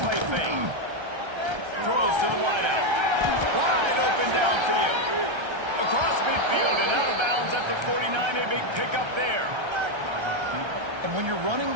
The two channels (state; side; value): late; left; 1.3 ms